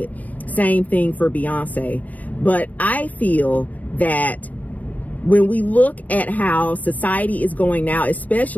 Same thing for Beyonce. But I feel that when we look at how society is going now,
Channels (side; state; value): right; late; 0.075 ms